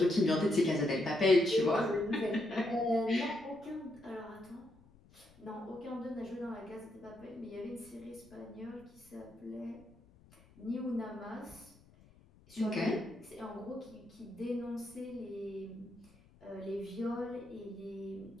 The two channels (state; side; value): noise; left; rumble, 26 dB below the sound